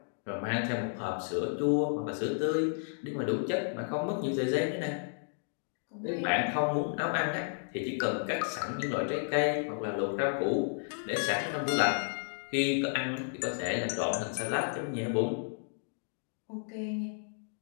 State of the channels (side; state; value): right; silent; digital silence